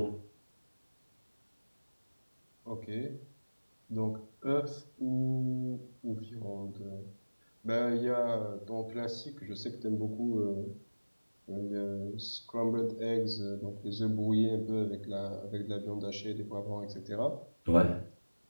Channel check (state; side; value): inverted; both; correlation -1.00